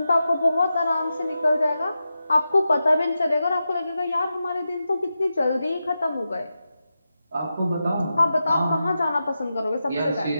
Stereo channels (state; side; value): inverted; both; correlation -0.90